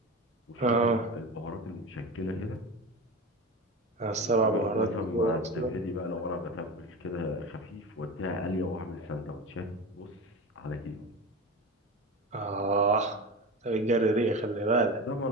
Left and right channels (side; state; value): both; normal; correlation 0.27